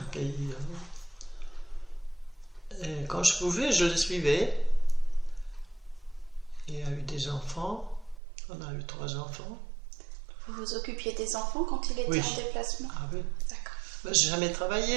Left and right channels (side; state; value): left; drops out; at 8.2 s